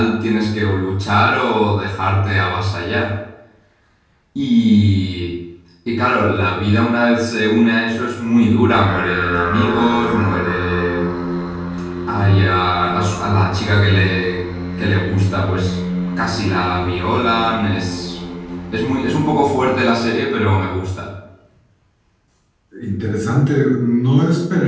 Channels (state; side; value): identical; both; correlation 1.00